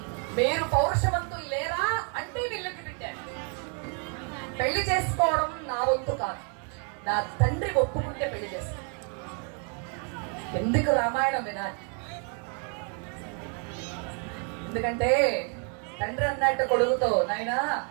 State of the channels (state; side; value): quieter; left; 38.5 dB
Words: మీరు పౌరుషవంతులు లేరా అంటే వీళ్ళకి పెట్టారు. పెళ్లి చేసుకోవడం నా వంతు కాదు, నా తండ్రి ఒప్పుకుంటే పెళ్లి చేస్తాను. ఎందుకు రామాయణం వినాలి? ఎందుకంటే తండ్రి అన్నట్టు కొడుకుతో, నాయనా